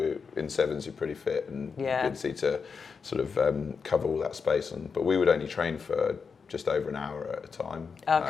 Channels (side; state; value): right; quieter; 5.5 dB